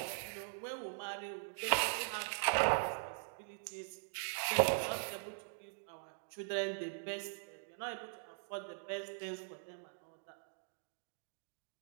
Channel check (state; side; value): silent; left; digital silence